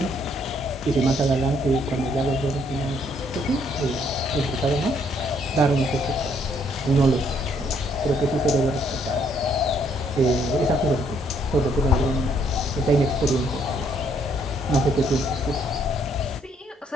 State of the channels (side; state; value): both; normal; correlation 0.69